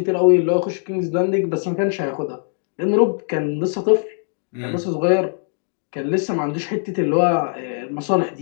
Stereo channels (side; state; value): right; silent; digital silence